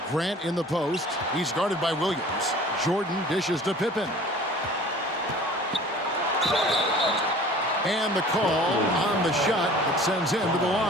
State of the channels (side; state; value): both; normal; correlation 0.46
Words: Grant in the post. He's guarded by Williams. Jordan dishes to Pippen. And the call on the shot that sends him to the